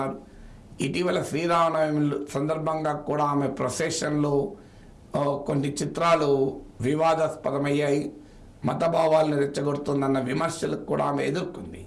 ఇటీవల శ్రీరామనవమి సందర్భంగా కూడా ఆమె ప్రొసెషన్లో కొన్ని చిత్రాలు వివాదాస్పదమయ్యాయి, మతభావాలను రెచ్చగొడుతుందన్న విమర్శలకు కూడా ఆమె ఎదుర్కొంది.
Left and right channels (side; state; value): both; identical; correlation 1.00